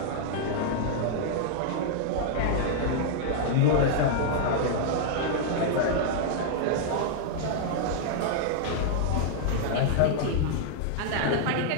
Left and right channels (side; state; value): both; different; correlation -0.01